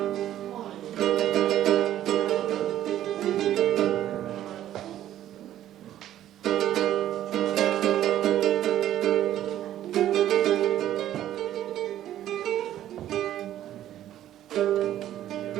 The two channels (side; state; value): left; quieter; 12.2 dB